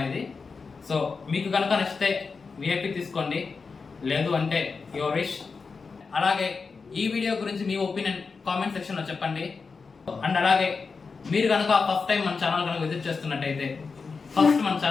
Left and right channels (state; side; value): quieter; right; 4.8 dB